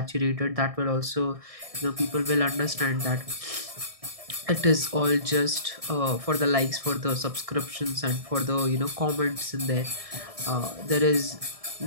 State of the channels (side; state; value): left; late; 1.6 ms